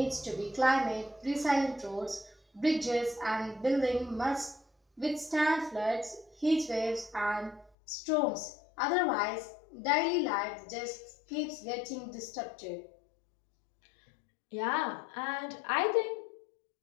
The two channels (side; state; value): right; drops out; at 7.7 s